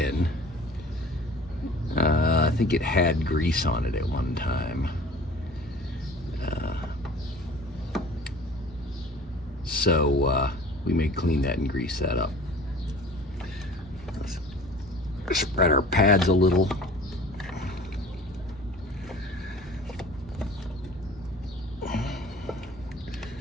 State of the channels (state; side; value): normal; both; correlation 0.45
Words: I think it had grease on it at one time. So we may clean that and grease that up. Let's spread our pads a little.